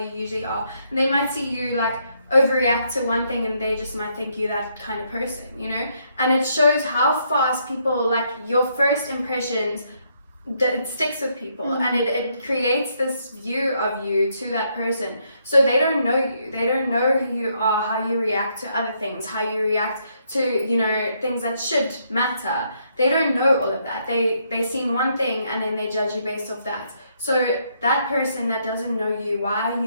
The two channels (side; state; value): both; inverted; correlation -0.73